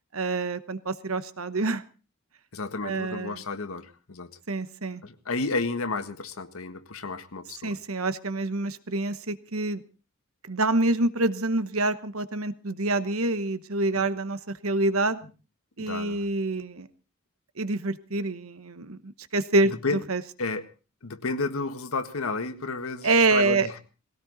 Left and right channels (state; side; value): normal; both; correlation 0.01